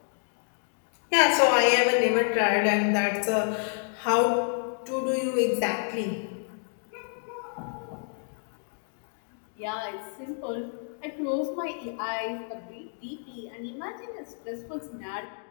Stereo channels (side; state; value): right; silent; 57 dB below the other